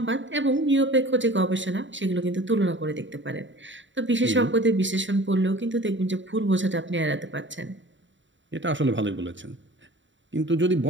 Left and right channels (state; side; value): late; left; 0.54 ms